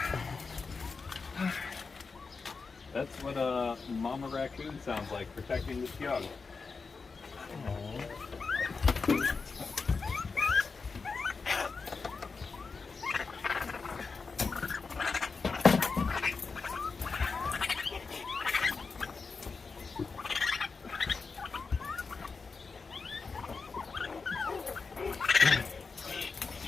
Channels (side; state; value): right; quieter; 4.6 dB